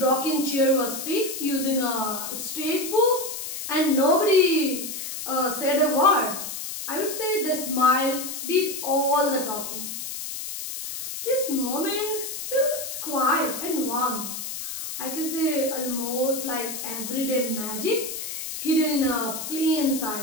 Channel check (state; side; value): noise; left; hiss, 6 dB below the sound